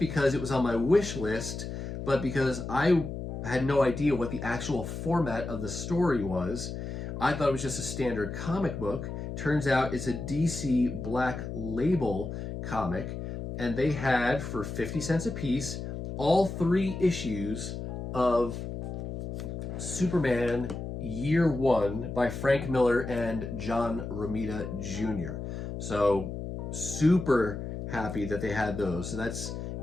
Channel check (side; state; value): left; noise; hum, 6 dB below the sound